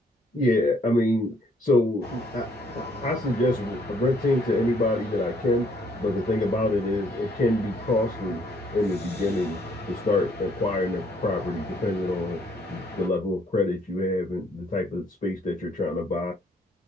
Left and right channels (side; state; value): both; normal; correlation 0.66